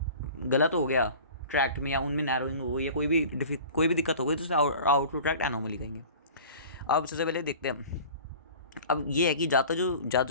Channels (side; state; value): both; inverted; correlation -0.42